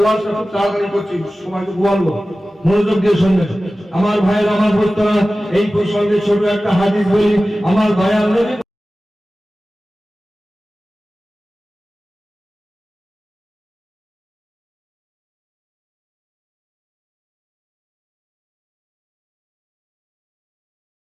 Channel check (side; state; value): both; normal; correlation 0.96